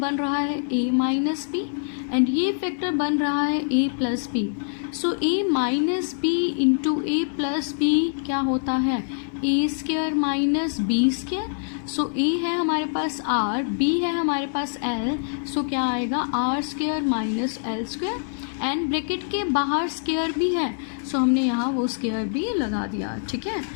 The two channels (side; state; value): right; silent; 62 dB below the other